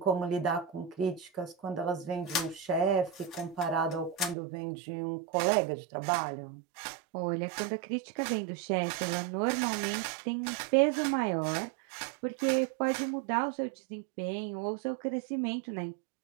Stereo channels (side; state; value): left; drops out; at 4.4 s